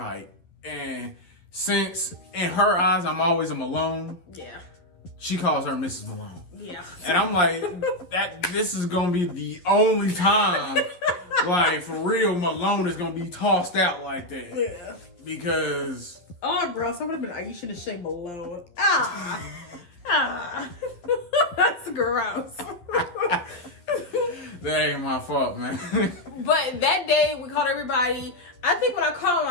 And since in her eyes I'm always a Malone. Yeah. She calls her Mrs. Malone. Yeah. And I'm like, this is gonna be the only time, like for real, Malone is gonna be tossed out like that. Yeah. Because oh, bro, someone would have been Aisha to say Malone. That's gross. That ain't my fault, man. But that day we called everybody. I think when I called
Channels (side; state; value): right; late; 11 ms